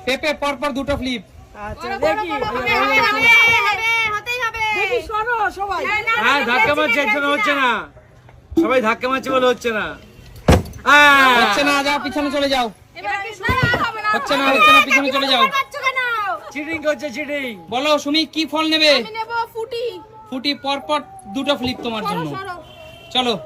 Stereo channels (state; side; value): identical; both; correlation 1.00